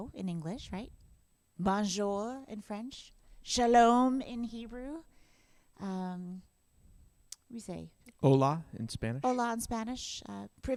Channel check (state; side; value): identical; both; correlation 1.00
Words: in English, right? Bonjour in French. Shalom in Hebrew. We say Hola in Spanish. hola in Spanish.